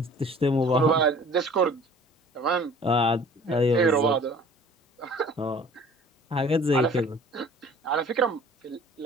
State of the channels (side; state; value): both; normal; correlation 0.49